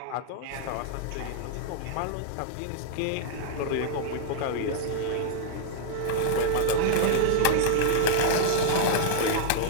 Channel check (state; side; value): different; both; correlation -0.01